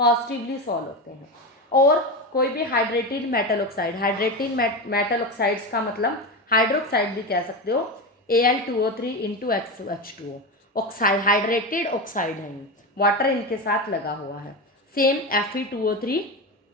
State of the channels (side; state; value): both; normal; correlation 0.19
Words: सोल होते हैं। और कोई भी hydrated metal oxide, hydrated metal oxides का मतलब हाइड्रोक्साइड भी कह सकते हो, Al2O3 into XH2O, oxide hydrated oxide है, वाटर इनके साथ लगा हुआ है। सेम Fe2O3